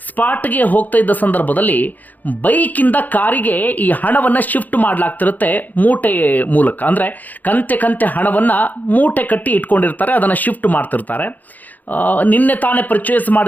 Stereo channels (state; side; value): late; right; 0.082 ms